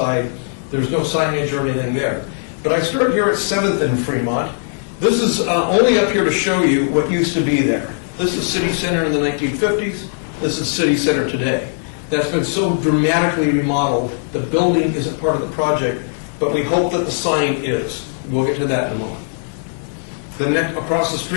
There's no signage or anything there. But I start here at 7th and Fremont. This is only up here to show you what used to be there. This is City Center in the 1950s. This is City Center today. That's been so dramatically remodeled. The building isn't part of the project, but we hope that the sign is. We'll get to that in a moment. The next across the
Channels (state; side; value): silent; right; 64 dB below the other